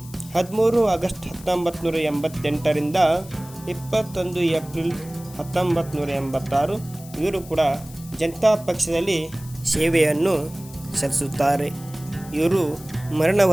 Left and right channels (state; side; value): noise; left; hiss, 19 dB below the sound